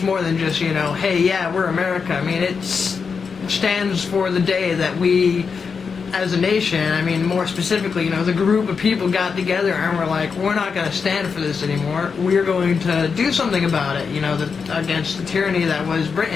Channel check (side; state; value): right; quieter; 5.6 dB